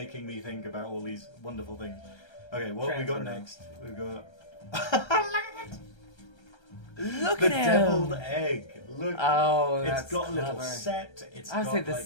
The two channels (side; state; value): right; late; 1.3 ms